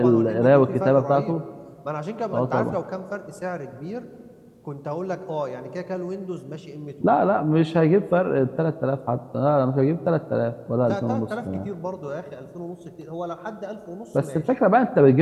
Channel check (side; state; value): both; identical; correlation 1.00